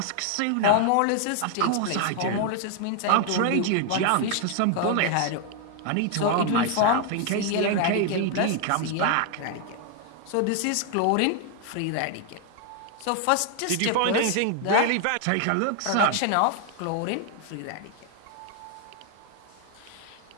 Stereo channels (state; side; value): different; both; correlation 0.00